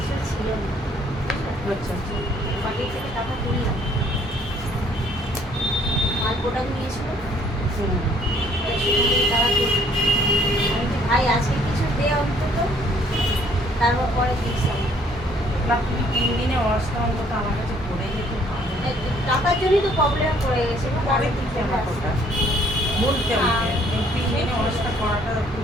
ছিল না। আচ্ছা বাড়ি থেকে টাকা তুললাম, মাল প্রোডাক্ট নিয়েছিল, টাকা তুললাম। আমি কি ভাই আজকে কিছু দে অন্তত, তারপর পরে দিস। না তুমি 3 দিনে ওয়াশটা অন্তত আমার কাছে করে যেতে ভালো। টাকার জন্যই তো প্রবলেম পড়ে গেছে। পরে দিতে আমার কথা বলতে হবে, 3 দিনে ওয়াশটা করাটা খুব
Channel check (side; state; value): both; normal; correlation 0.62